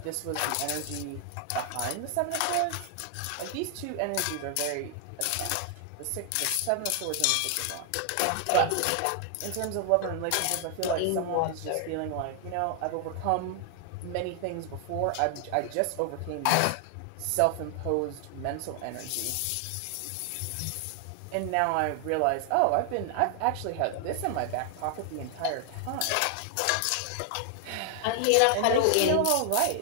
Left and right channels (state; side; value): different; both; correlation 0.00